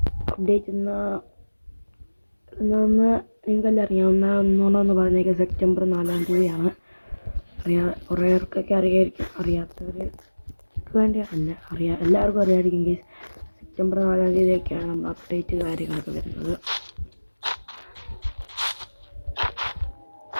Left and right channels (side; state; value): both; inverted; correlation -1.00